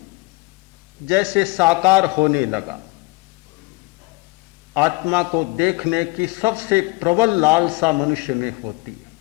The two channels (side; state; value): right; quieter; 25.3 dB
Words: जैसे साकार होने लगा। आत्मा को देखने की सबसे प्रबल लालसा मनुष्य में होती है।